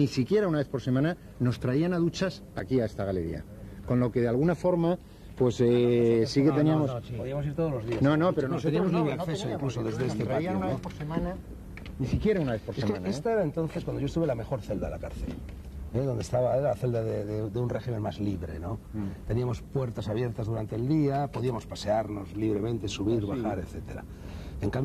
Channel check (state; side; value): identical; both; correlation 1.00